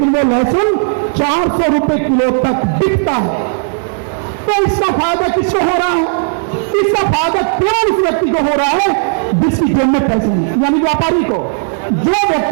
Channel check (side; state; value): left; silent; digital silence